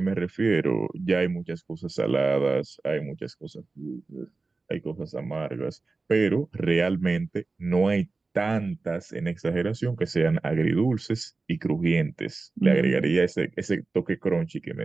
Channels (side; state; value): left; quieter; 3.7 dB